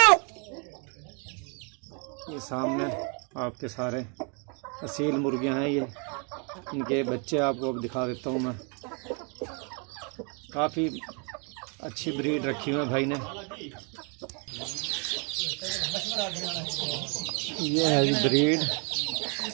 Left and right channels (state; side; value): quieter; left; 36.4 dB